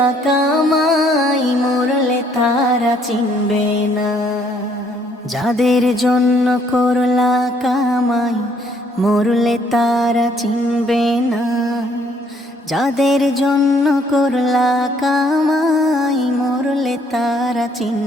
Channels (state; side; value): normal; both; correlation 0.65